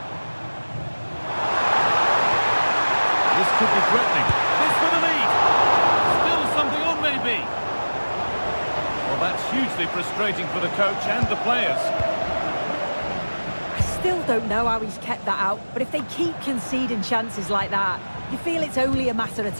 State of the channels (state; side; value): inverted; both; correlation -1.00